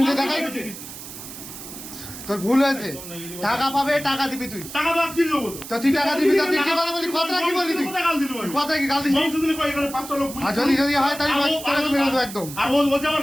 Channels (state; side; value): noise; right; hiss, 12 dB below the sound